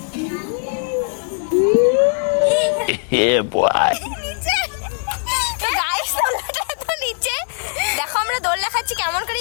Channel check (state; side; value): silent; right; digital silence